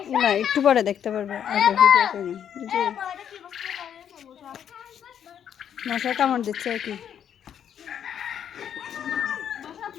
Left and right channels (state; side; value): quieter; right; 9.0 dB